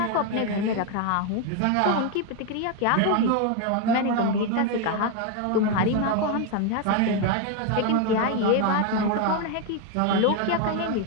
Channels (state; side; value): different; both; correlation 0.01